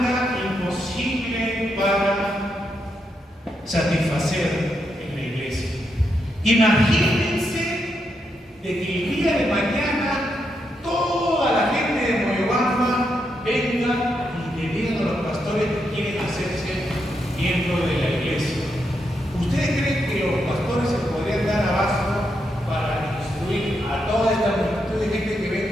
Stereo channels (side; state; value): both; normal; correlation 0.82